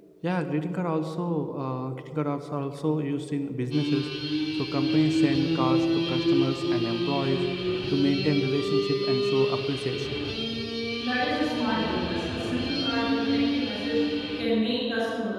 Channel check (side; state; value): both; identical; correlation 1.00